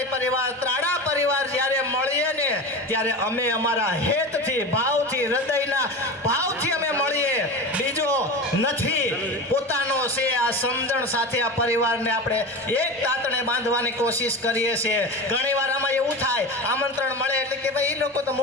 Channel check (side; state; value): both; normal; correlation 0.28